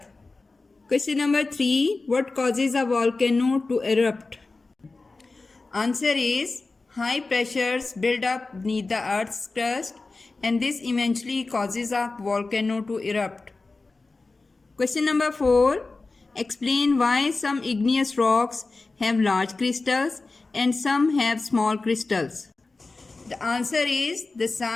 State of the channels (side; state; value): right; quieter; 3.6 dB